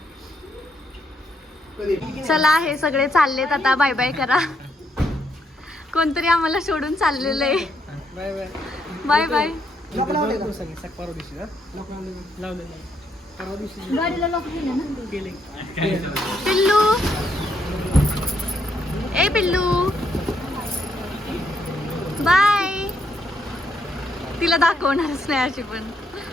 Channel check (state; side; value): normal; both; correlation 0.75